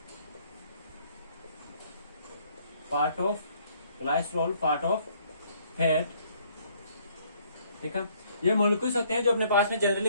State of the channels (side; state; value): both; inverted; correlation -0.63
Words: पार्ट ऑफ फैट। ठीक है, ये मॉलिक्यूल्स होते हैं जो अपने पास में